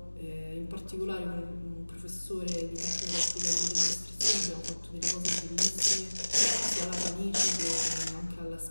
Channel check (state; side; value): inverted; both; correlation -1.00